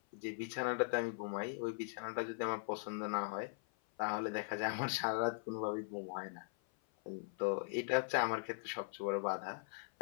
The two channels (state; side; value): silent; right; 51 dB below the other